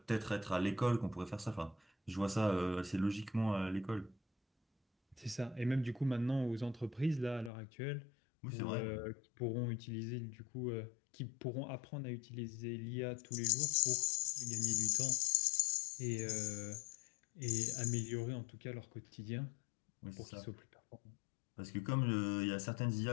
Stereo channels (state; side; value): drops out; right; at 7.5 s